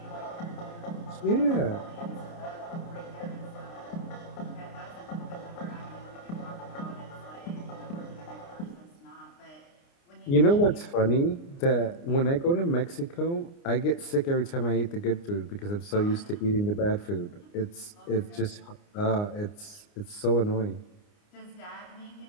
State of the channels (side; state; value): right; late; 29 ms